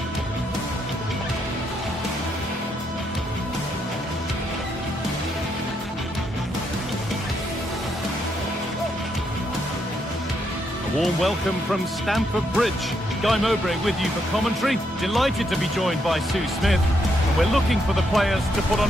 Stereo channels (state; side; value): normal; both; correlation 0.77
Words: A warm welcome from Stamford Bridge. Guy Mowbray with you for commentary. Delighted to be joined by Sue Smith. And we're looking for the players to put on